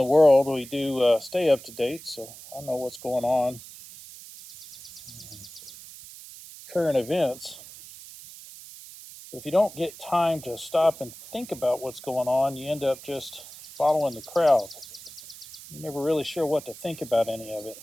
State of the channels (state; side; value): noise; right; hiss, 16 dB below the sound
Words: world. We do stay up to date, so I know what's going on. Current events. But if you don't get time to stop and think about what's going on, you end up just following the crowd. You're never really sure what to think about any of it.